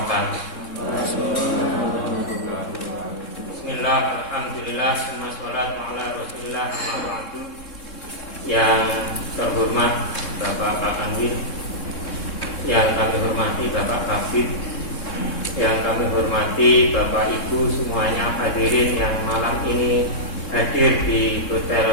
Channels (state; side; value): late; right; 3.7 ms